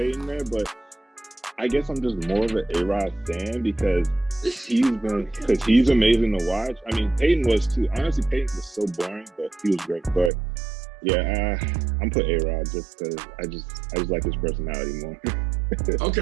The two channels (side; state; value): left; drops out; at 10.3 s